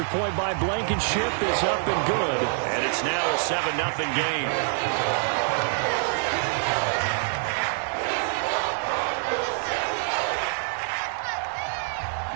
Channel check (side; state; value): left; silent; 61 dB below the other